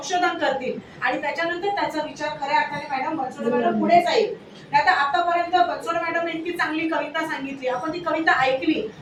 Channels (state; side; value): identical; both; correlation 1.00